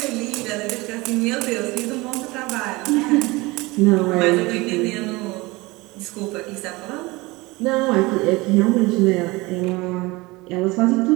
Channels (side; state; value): left; quieter; 22.6 dB